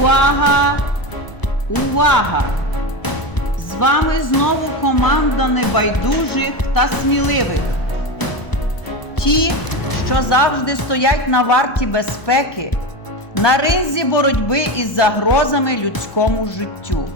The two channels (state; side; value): late; right; 1.0 ms